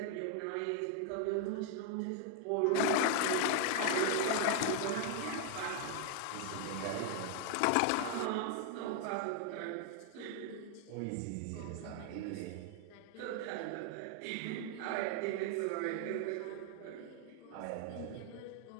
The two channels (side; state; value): both; different; correlation 0.00